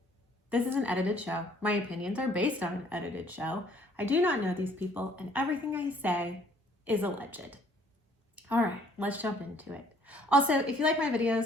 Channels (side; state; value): both; normal; correlation 0.61